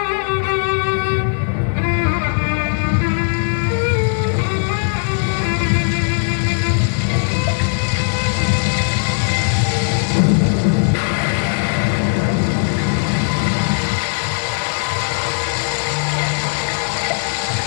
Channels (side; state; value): right; silent; 66 dB below the other